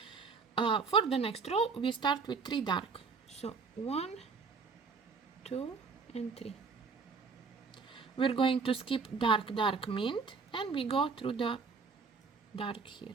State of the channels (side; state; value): left; quieter; 4.9 dB